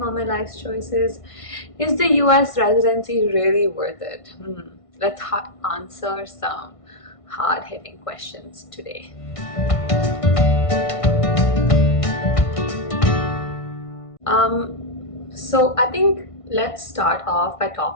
all my life's choices? Is the US residency really worth it? Let's answer some hard-hitting questions today. So I think let's start off by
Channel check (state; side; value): late; right; 1.6 ms